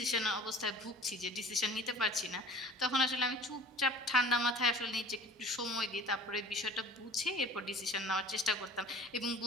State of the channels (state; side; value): normal; both; correlation 0.43